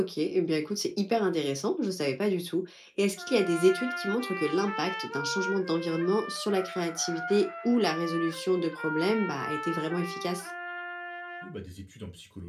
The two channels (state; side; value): identical; both; correlation 1.00